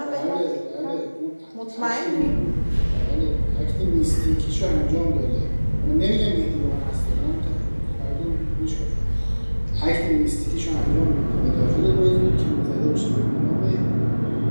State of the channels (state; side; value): inverted; both; correlation -1.00